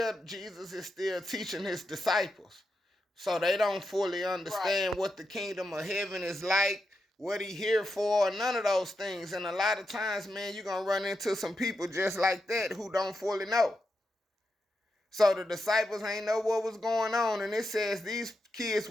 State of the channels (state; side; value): normal; both; correlation 0.86